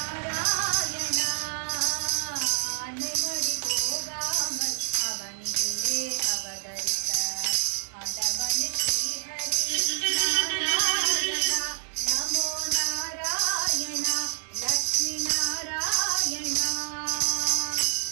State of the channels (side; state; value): left; silent; digital silence